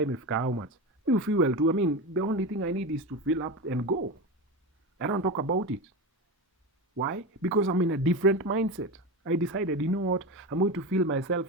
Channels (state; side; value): normal; both; correlation 0.21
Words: imefika how much. Me fuel too. The only thing I need is to fill up and go. I don't talk about it. Why? Because I'm in a different mindset. I decided, you know what, I'm going to fill